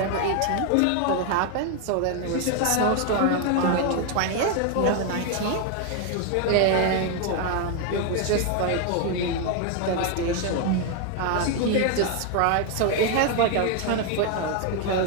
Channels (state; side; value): different; both; correlation 0.01